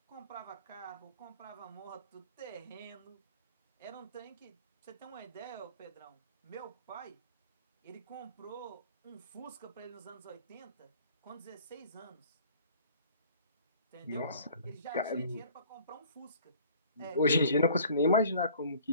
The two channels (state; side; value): inverted; both; correlation -0.51